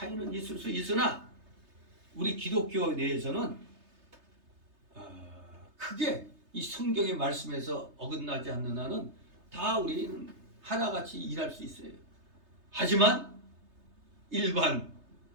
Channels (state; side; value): late; left; 3.3 ms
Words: 있을 수 있으나 우리 기독교 내에서는 크게 이 성경의 말씀에서 어긋나지 않는 한은 다 우리는 하나같이 일할 수 있어요. 하지만 일반